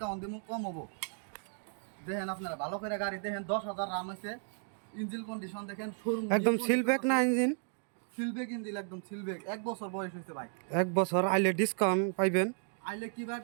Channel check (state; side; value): silent; left; 55 dB below the other